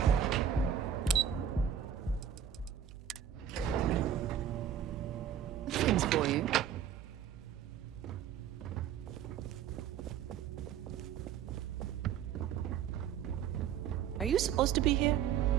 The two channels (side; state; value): left; quieter; 9.3 dB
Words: Things for you. Are you supposed to be here?